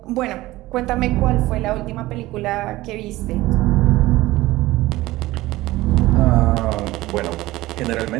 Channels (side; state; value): left; quieter; 17.9 dB